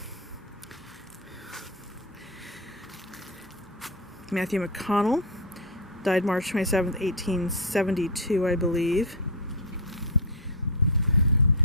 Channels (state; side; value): normal; both; correlation 0.03